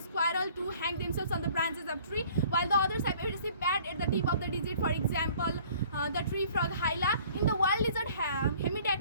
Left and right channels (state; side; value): inverted; both; correlation -0.53